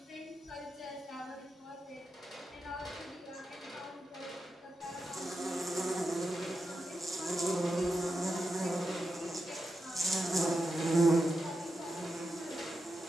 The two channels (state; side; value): normal; both; correlation 0.88